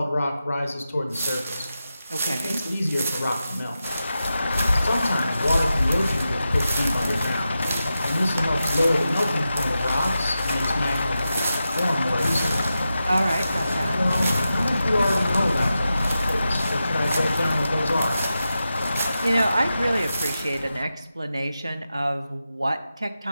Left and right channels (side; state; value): both; inverted; correlation -0.91